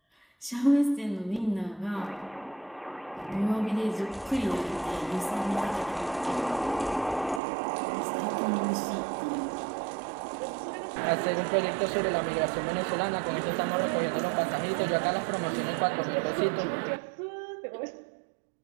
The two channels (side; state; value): left; drops out; at 7.4 s